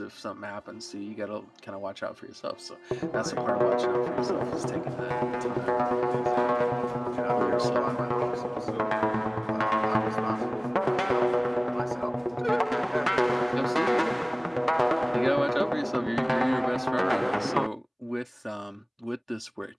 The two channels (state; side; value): identical; both; correlation 1.00